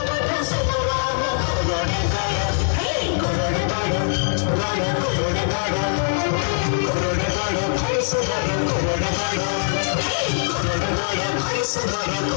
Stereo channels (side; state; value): right; silent; digital silence